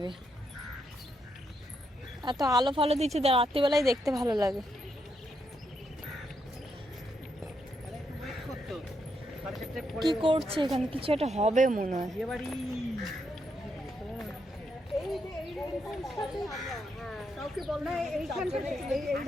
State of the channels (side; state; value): both; normal; correlation 0.79